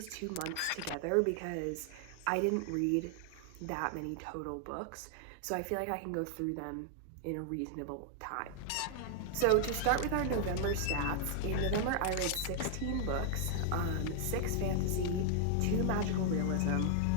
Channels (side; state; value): both; different; correlation 0.00